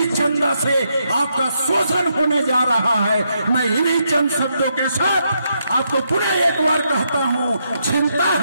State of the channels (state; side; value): inverted; both; correlation -0.79